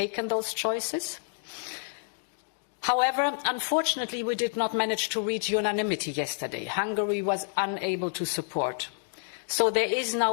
those choices. However, unfortunately, we did not manage to reach unanimity yesterday. Hungary was unable to support. So there is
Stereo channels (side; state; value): right; silent; digital silence